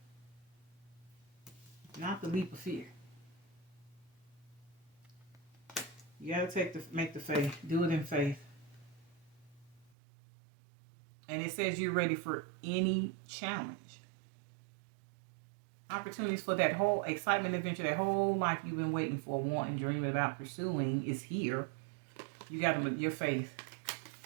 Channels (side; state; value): left; drops out; at 9.9 s